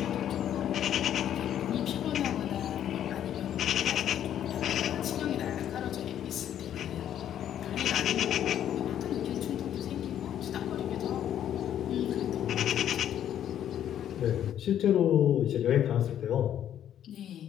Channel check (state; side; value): quieter; right; 10.5 dB